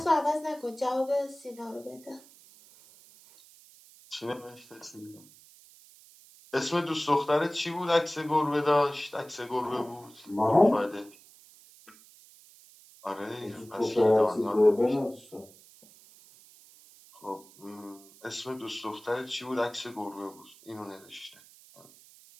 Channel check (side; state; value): right; noise; hiss, 24 dB below the sound